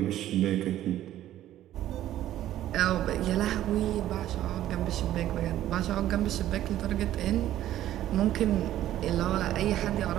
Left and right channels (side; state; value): left; quieter; 13.0 dB